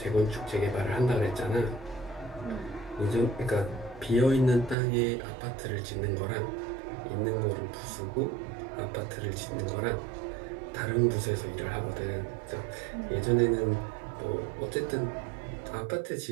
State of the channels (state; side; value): drops out; left; at 4.8 s